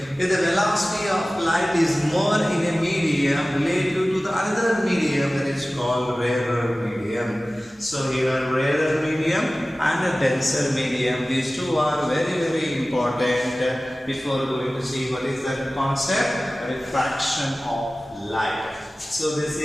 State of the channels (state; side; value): normal; both; correlation 0.97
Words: If the velocity of light is more in a medium relative to the other medium, that is called rarer medium. So here rarer medium and a denser medium, these two are very important before going to see what is the concept, refraction of light. So this